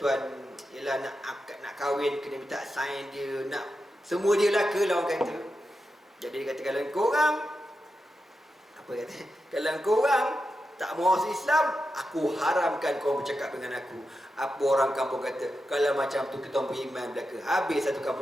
ialah nak kahwin kena minta sign dia, nak semua dia laka lah orang kata. Jadi dia kata kalau korang kalau korang tak mau masuk Islam, aku haramkan korang bercakap dengan aku. Apa orang kampung kata, kalau macam tu kita beriman belaka. Habis satu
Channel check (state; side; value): normal; both; correlation 0.89